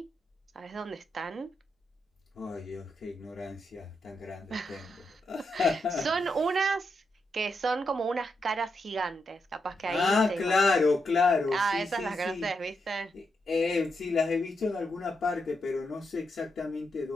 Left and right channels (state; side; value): normal; both; correlation 0.83